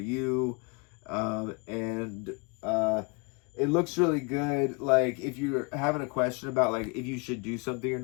It looks really good. Like, if you're having a question about, like, if you should do something or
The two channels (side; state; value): right; quieter; 30.9 dB